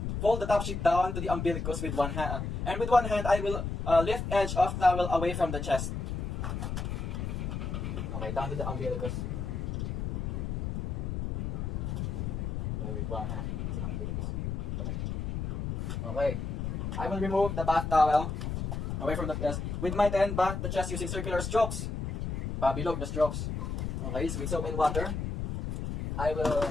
fold the top sheet down to the umbilicus with one hand. And with one hand, I will lift edge of towel away from the chest. Okay, down to the umbilicus. Okay, with one hand. Okay, I will remove the bath towel away from the chest. With my hand, bath the chest using circular strokes. Pabilog the strokes. Okay, so with soap and water, I will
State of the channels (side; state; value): left; noise; rumble, 3 dB below the sound